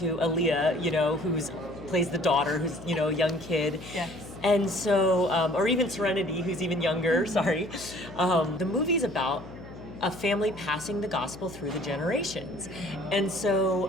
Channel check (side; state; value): left; noise; hum, 15 dB below the sound